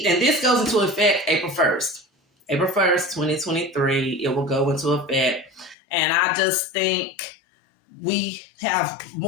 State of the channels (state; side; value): drops out; right; at 5.8 s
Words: and this goes into effect April 1st. April 1st, 2023, it will go into effect. And I just think we have